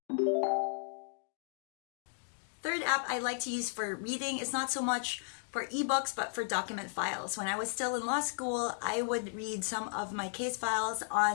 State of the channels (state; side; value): silent; right; digital silence